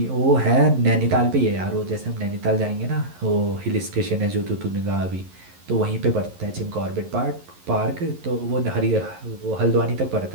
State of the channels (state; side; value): late; left; 11 ms